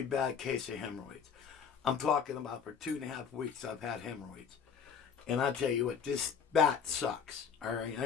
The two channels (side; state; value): right; quieter; 6.9 dB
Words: bad case of hemorrhoids. I'm talking about for 2.5 weeks I've had hemorrhoids, and I tell you what, that sucks. All right,